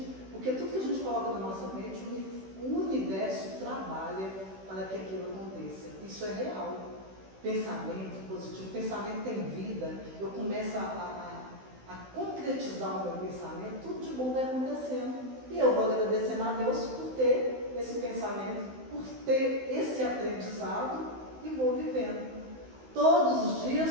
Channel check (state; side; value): late; left; 16 ms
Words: porque tudo que a gente coloca na nossa mente, o universo trabalha para que aquilo aconteça. Isso é real. Pensamento positivo, pensamento tem vida, eu começo a concretizar o meu pensamento, tudo de bom vai acontecendo. E eu vou agradecendo a Deus por ter esse pensamento, por ter esse aprendizado e vou vivendo. Todos os